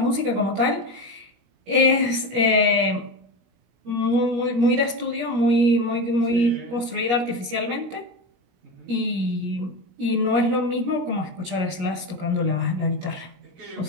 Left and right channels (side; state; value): left; late; 17 ms